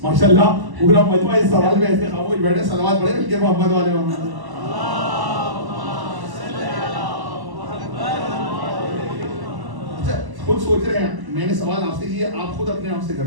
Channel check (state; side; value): late; left; 1.1 ms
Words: ماشاءاللہ پورا مجمع اس سوال میں ایسے خاموش بیٹھے، صلوات پڑھے مل کے محمد والے محمد۔ اچھا خود سوچ رہے ہیں، میں نے سوال آپ سے کیا، آپ خود اپنے آپ سے کر